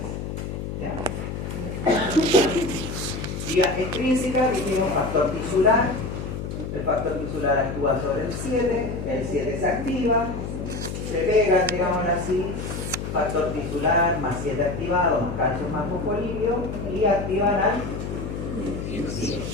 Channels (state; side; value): noise; left; hum, 6 dB below the sound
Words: ¿Ya? Vía extrínseca, dijimos factor tisular. El factor tisular actúa sobre el 7 se activa, se pegan, digámoslo así, factor tisular más 7 activado, más calcio más fosfolipio, y activan al 10.